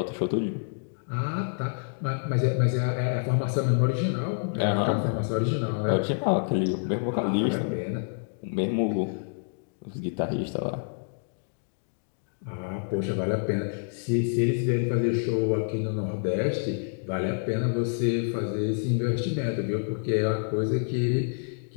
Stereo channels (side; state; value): right; silent; digital silence